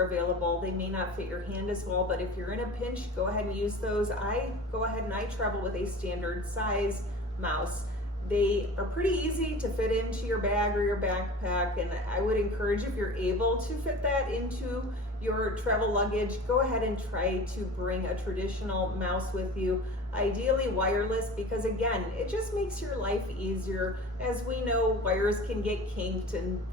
available. They may not fit your hand as well, but if you're in a pinch, go ahead and use those. I go ahead and I travel with a standard size mouse. They are pretty easy to fit into your bag or your backpack, and I would encourage, if you're able to fit that into your travel luggage, go ahead and try to bring a traditional mouse with you. Ideally wireless, because again, it just makes your life easier. As we know, wires can get kinked and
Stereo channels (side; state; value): both; normal; correlation 0.37